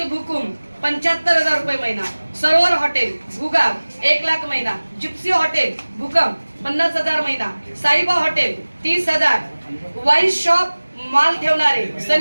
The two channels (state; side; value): inverted; both; correlation -1.00